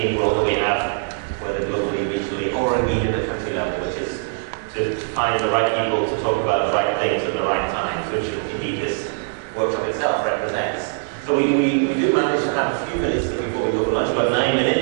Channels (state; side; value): silent; left; digital silence